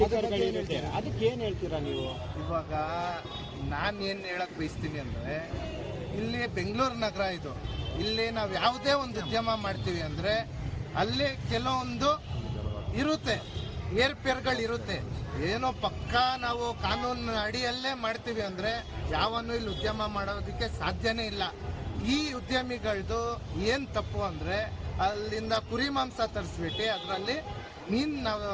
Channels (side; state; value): both; identical; correlation 1.00